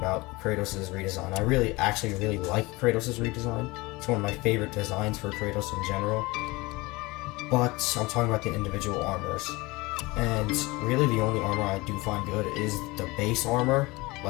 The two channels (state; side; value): quieter; right; 22.8 dB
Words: Kratos' redesign. I actually really like Kratos' redesign. It's one of my favorite designs for Kratos in general. But I'm talking about the individual armors. And really the only armor I do find good is the base armor,